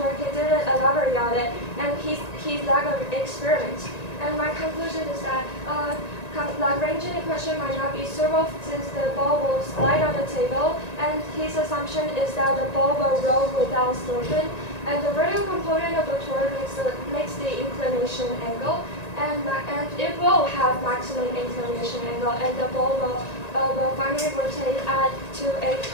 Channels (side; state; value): right; late; 1.9 ms